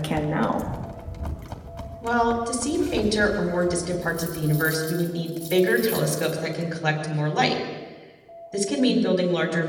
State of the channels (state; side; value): identical; both; correlation 1.00